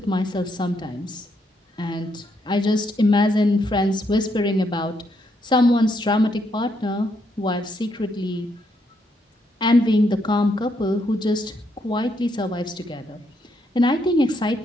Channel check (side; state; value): both; normal; correlation 0.76